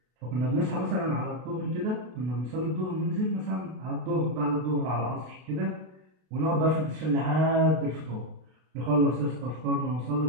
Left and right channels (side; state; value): left; late; 32 ms